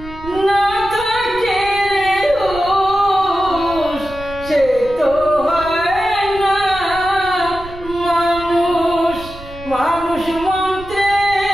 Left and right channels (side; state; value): right; noise; rumble, 15 dB below the sound